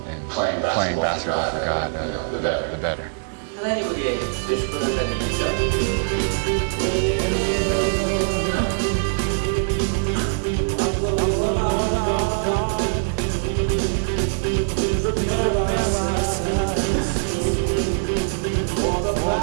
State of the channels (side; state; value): left; silent; 64 dB below the other